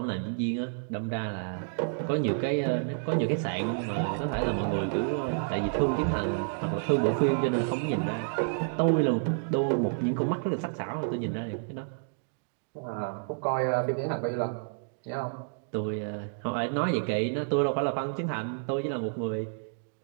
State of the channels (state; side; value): silent; left; digital silence